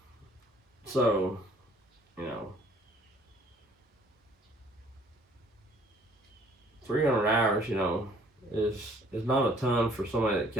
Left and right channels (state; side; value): normal; both; correlation 0.58